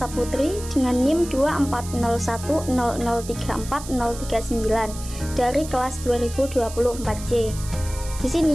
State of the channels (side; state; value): right; noise; hiss, 13 dB below the sound